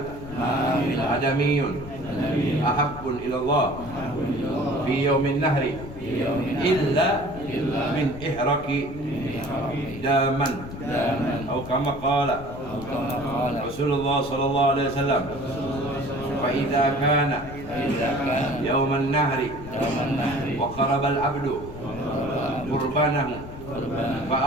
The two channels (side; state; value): left; noise; rumble, 12 dB below the sound